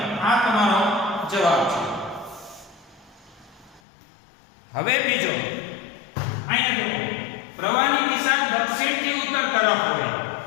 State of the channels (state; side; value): drops out; right; at 3.8 s